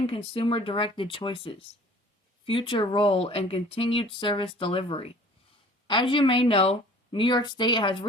consumer-directed choices, future role, and continued service delivery. As you may know, New York State has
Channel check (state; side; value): normal; both; correlation 0.49